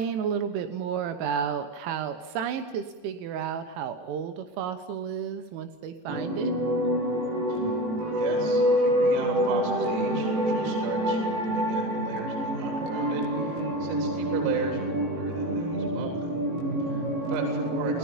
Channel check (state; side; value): late; left; 18 ms